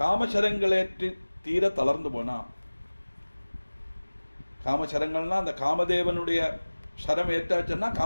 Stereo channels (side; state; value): both; inverted; correlation -1.00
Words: தீர தளர்ந்து போனான். காமசரங்கள்னா அந்த காமதேவனுடைய சரம் ஏற்றாச்சுன்னா